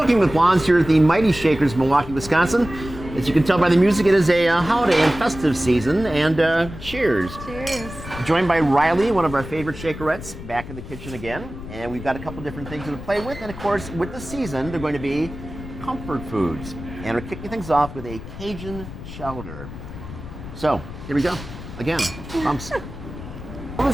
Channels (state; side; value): noise; left; rumble, 12 dB below the sound